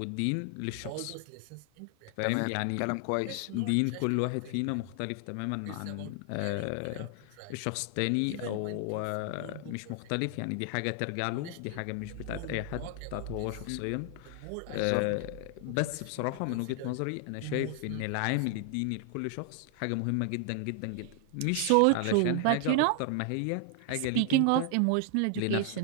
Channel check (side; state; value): both; different; correlation 0.00